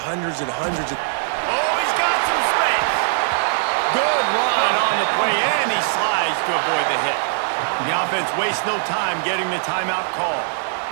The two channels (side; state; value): left; silent; digital silence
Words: and hundreds of... Oh, he's got some space. Good run on the play, and he slides to avoid the hit. The offense wastes no time getting the timeout call.